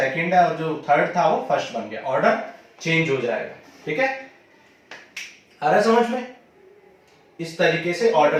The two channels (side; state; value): both; identical; correlation 1.00